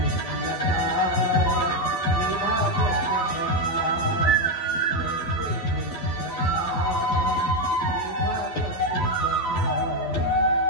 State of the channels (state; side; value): late; right; 11 ms